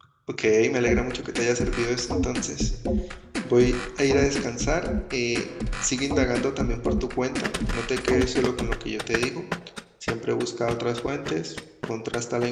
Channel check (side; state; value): both; identical; correlation 1.00